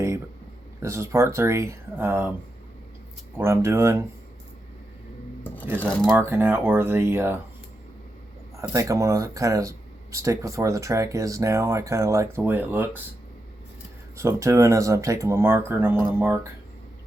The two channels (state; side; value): normal; both; correlation 0.87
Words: but this is part 3. What I'm doing is I'm marking out where I think I'm going to kind of stick with where the track is now. I kind of like the way it looks. So what I'm doing is I'm taking my marker and I'm going to mark